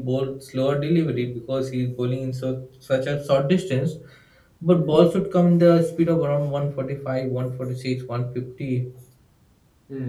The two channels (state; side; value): identical; both; correlation 1.00